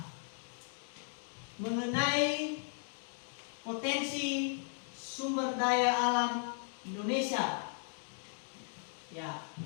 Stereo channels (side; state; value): right; silent; 53 dB below the other